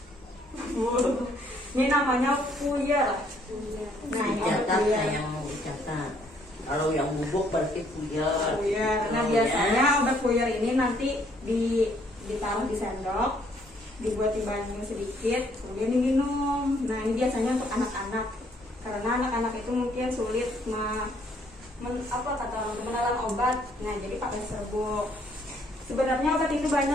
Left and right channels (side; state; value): both; normal; correlation 0.66